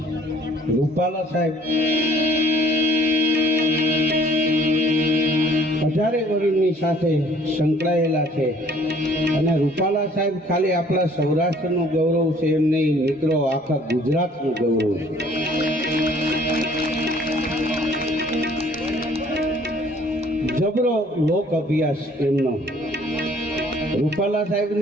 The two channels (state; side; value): normal; both; correlation 0.57